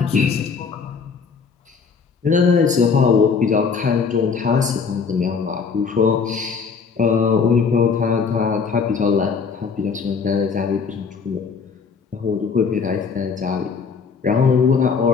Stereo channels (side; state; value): right; quieter; 5.6 dB